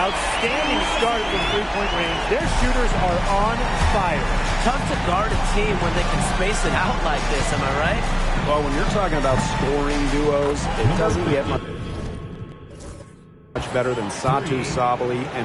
start from three-point range. Their shooters are on fire. Tough to guard a team when they can space it out like this, am I right? Well, when you're talking about scoring duos, it doesn't get much better than Satu Sabali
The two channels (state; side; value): identical; both; correlation 1.00